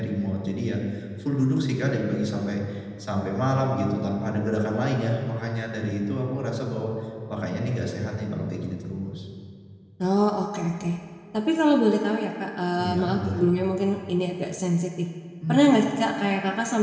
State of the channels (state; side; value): identical; both; correlation 1.00